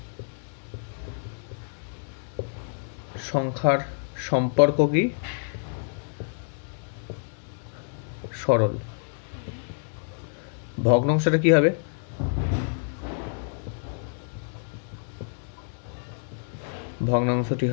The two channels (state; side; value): silent; right; digital silence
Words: সংখ্যার সম্পর্ক কি সরল। ভগ্নাংশটা কি হবে, ভগ্নাংশটি